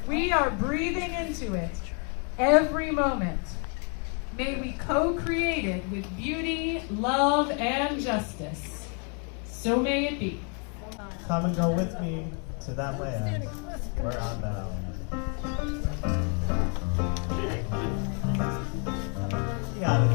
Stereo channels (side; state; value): right; quieter; 38.7 dB